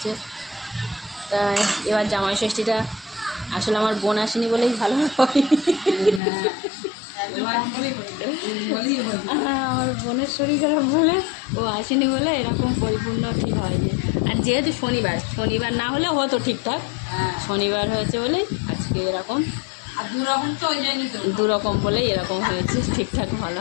তাই এবার জামাই ষষ্ঠীটা আসলে আমার বোন আসেনি বলেই ভালো হয়। আমার বোনের শরীর খারাপ বলে ও আসেনি বলে এরকম পরিপূর্ণ ঠিক হয়নি। আর যেহেতু শনিবার না হলে হতো ঠিকঠাক, শনিবার হয়েছে বলেই আজকে এরকম, আর দুরকম বলেই এরকম হয়েছে, ঠিকঠাক ভালো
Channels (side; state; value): right; drops out; at 6.2 s